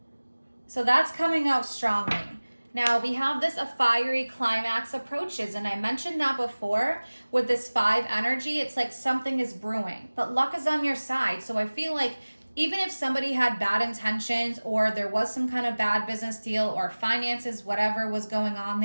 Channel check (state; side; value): inverted; both; correlation -1.00